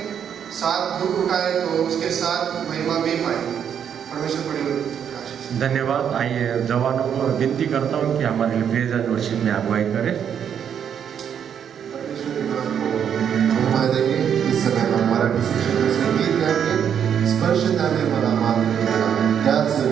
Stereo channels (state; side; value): quieter; left; 8.4 dB